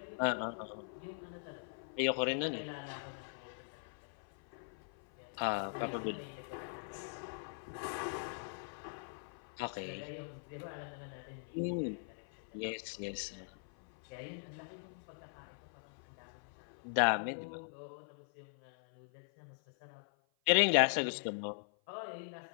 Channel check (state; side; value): silent; right; 51 dB below the other